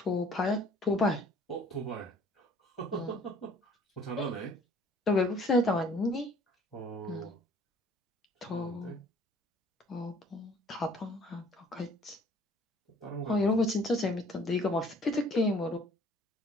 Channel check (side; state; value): both; normal; correlation 0.55